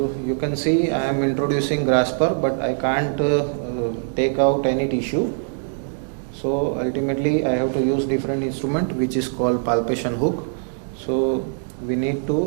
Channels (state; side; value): silent; left; digital silence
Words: you can see I am introducing grasper, but I can't take out any tissue. So ultimately I have to use different instrument which is called palpation hook. So we need